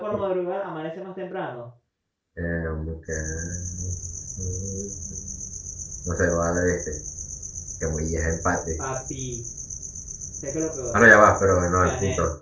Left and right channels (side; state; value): both; identical; correlation 1.00